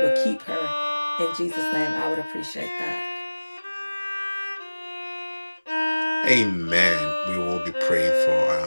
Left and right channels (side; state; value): both; inverted; correlation -1.00